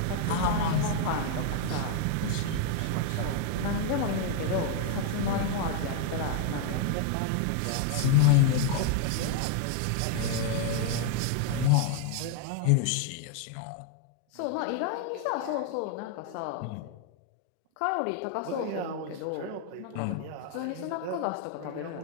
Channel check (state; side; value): different; both; correlation 0.00